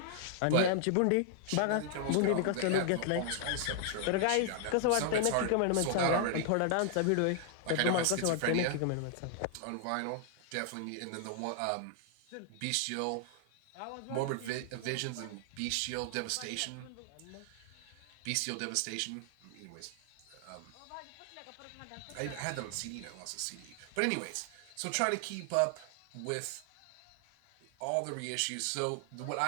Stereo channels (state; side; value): different; both; correlation 0.00